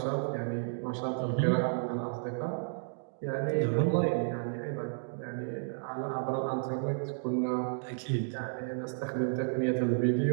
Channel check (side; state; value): left; silent; digital silence